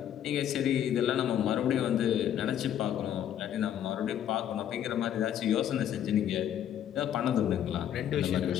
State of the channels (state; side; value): quieter; right; 10.3 dB